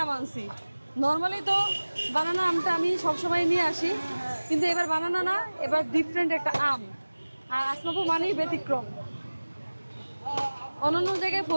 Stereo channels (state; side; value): inverted; both; correlation -1.00